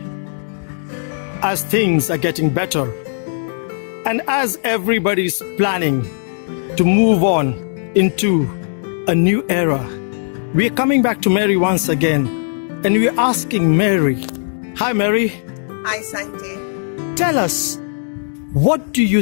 as things are getting better, and as everybody's planning to move on into a new era, we are coming back to Mary once again, and we are asking Mary. Hi, Mary. Hi, Sanjay. Tell us, what do you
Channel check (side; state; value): right; silent; digital silence